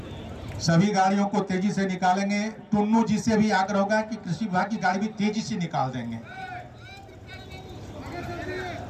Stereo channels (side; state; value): both; identical; correlation 1.00